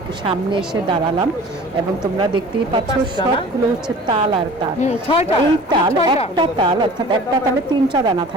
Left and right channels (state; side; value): normal; both; correlation 0.43